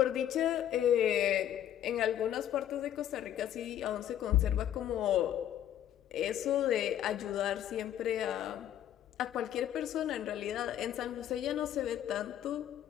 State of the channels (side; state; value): right; quieter; 11.1 dB